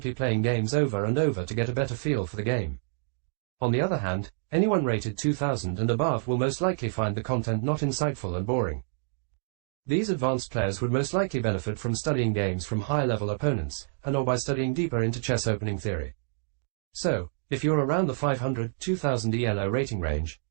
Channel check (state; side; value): silent; left; digital silence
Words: playing games over and over to get a better feel for the game. On the other hand, anyone rated 2000 and above will most likely find the content not insightful and boring. These advanced players would most likely benefit from studying games from higher-level opponents, and/or by studying deeper into chess opening theory. So, if you're around the 500-2000 ELO rating range,